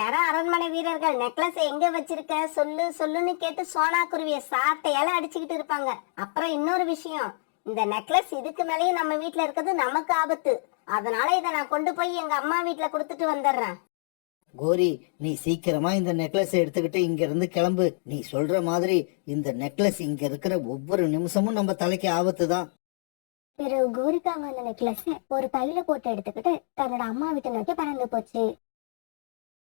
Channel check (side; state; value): right; silent; digital silence